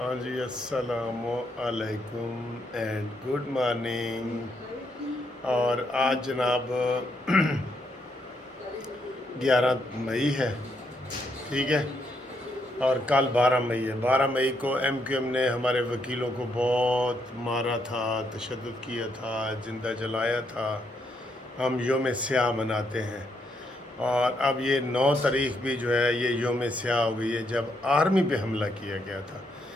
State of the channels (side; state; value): both; normal; correlation 0.76